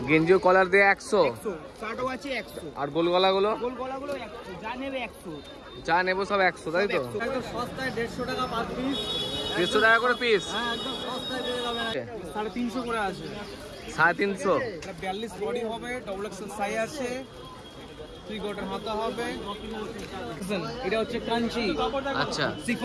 গেঞ্জি ও কলার দিয়ে 100। শার্টও আছে 100। আর গোল গলাগুলো? গোল গলাগুলো 100, যা নেবে 100। যা নেব সব 100, তাই তো? একদম সস্তায় 150 টাকা পার পিস। 150 টাকা করে পিস? হ্যাঁ, একদম সস্তায় পেয়ে যাবেন। 350 করে আছে। 350? এটা 42 বডি হবে, ডবল এক্সেল সাইজ আছে, 3 কোয়ার্টার হাতা হবে। এটা হচ্ছে কাঞ্চি। আচ্ছা,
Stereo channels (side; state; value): both; identical; correlation 1.00